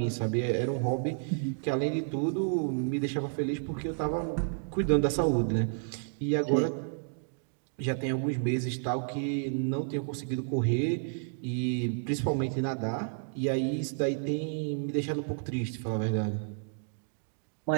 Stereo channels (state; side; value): silent; left; digital silence